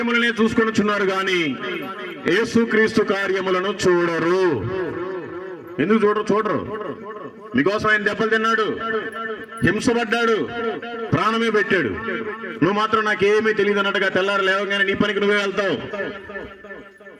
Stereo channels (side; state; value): both; identical; correlation 1.00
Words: చూసుకొనుచున్నారు గాని యేసుక్రీస్తు కార్యములను చూడరు. ఎందుకు చూడరు? మీకోసం ఆయన దెబ్బలు తిన్నాడు, హింసపడ్డాడు, ప్రాణమే పెట్టాడు. నువ్వు మాత్రం నాకేమీ తెలియదు అన్నట్టుగా తెల్లారు లేవగానే నీ పనికి నువ్వే వెళ్తావు.